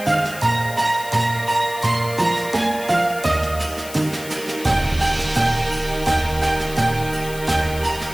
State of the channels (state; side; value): noise; left; hiss, 14 dB below the sound